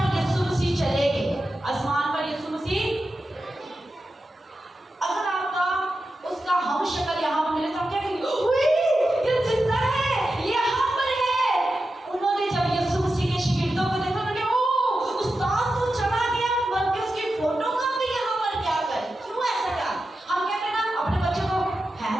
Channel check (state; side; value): normal; both; correlation 0.91